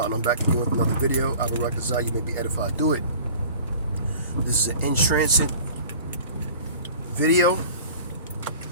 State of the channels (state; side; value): inverted; both; correlation -0.44